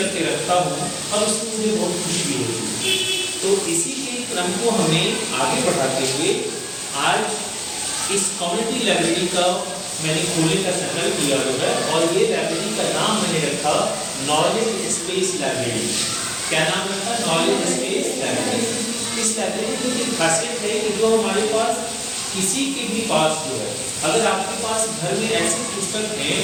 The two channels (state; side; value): identical; both; correlation 1.00